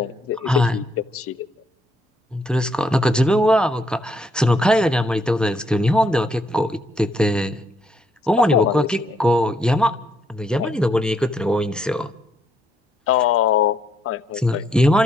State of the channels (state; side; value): normal; both; correlation 0.72